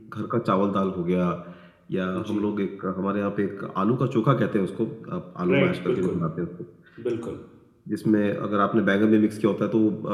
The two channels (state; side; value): identical; both; correlation 1.00